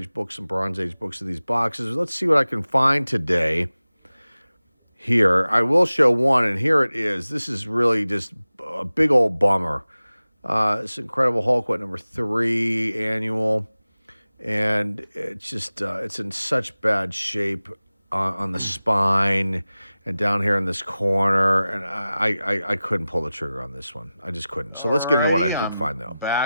books and Bronze Age books in these boxes. Let's see what I can find today. Here, I will show one, and here it is. This is really just a big old bummer. This Incredible Hulk, number 3 annual, and it's just it's in such bad shape on the spine and down here in this corner, and I couldn't pull the trigger on this one. I just couldn't. So let's get into what I did find, though.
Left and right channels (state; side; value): inverted; both; correlation -0.96